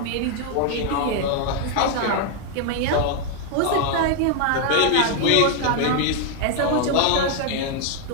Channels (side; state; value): both; different; correlation 0.00